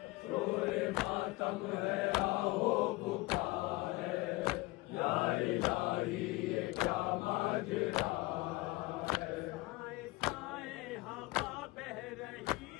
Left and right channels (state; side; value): quieter; right; 21.7 dB